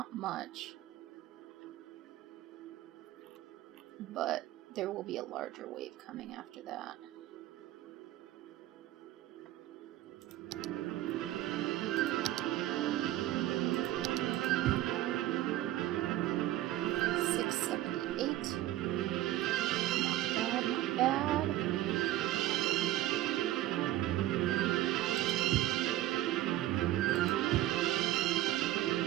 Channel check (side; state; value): left; quieter; 14.6 dB